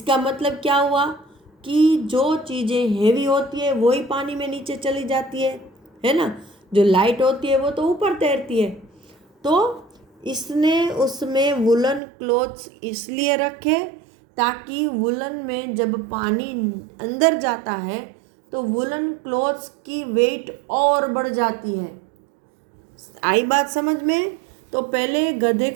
मतलब क्या हुआ कि जो चीज़ें हेवी होती है वही पानी में नीचे चली जाती है ना, जो लाइट होती है वो तो ऊपर तैरती है। तो इसने उसमें वुलन क्लॉथ्स इसलिए रखे ताकि वुलन में जब पानी अंदर जाता है तो वुलन क्लॉथ्स की वेट और बढ़ जाती है। आई बात समझ में? तो पहले गधे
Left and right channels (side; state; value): left; drops out; at 12.0 s